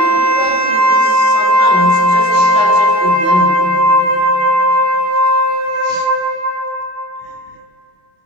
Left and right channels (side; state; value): left; late; 28 ms